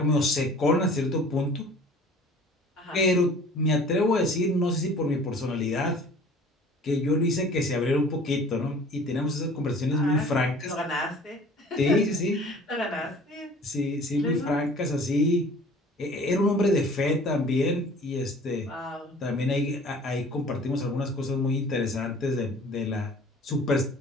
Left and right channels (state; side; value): normal; both; correlation 0.48